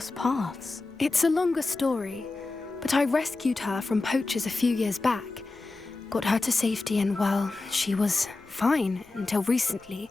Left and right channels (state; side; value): quieter; right; 3.4 dB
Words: paths? It's a longer story, but I rescued her from poachers a few years back. Got her to safety and, well, she was fine until recently.